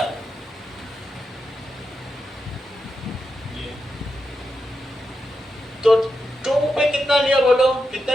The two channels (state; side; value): normal; both; correlation 0.87